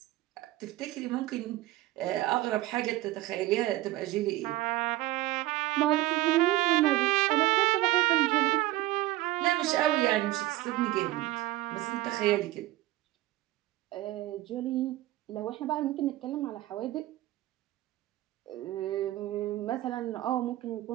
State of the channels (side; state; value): left; quieter; 17.0 dB